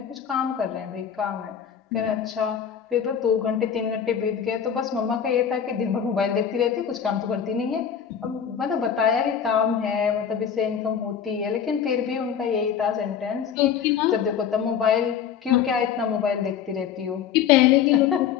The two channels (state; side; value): quieter; right; 8.1 dB